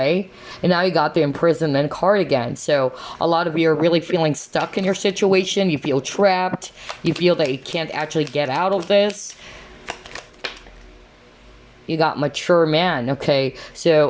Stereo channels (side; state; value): both; identical; correlation 1.00